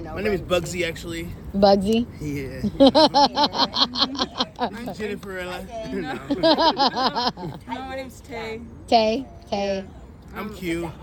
her. my name is Bugsy, actually. Bugsy. Yeah. I'm Jenniferella. No. My name's Tay. Tay. I'm Q.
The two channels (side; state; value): both; identical; correlation 1.00